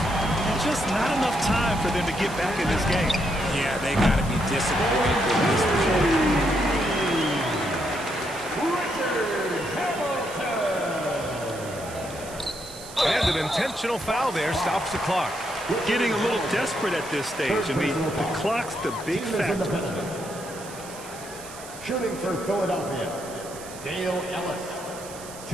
Just not enough time for them to get back in this game. Yeah, they got to be disappointed with this result. And an intentional foul there stops the clock. Getting a little desperate at this stage. I mean, the clock's the big factor. Shooting for Philadelphia, Dale Ellis,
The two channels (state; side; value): noise; right; hiss, 15 dB below the sound